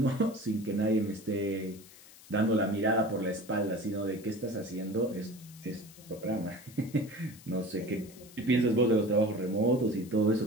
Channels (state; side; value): noise; left; hiss, 21 dB below the sound